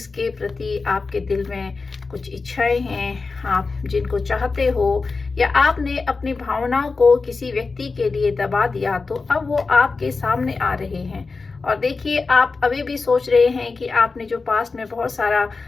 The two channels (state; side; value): quieter; right; 4.2 dB